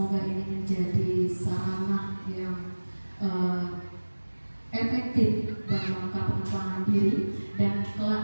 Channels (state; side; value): inverted; both; correlation -1.00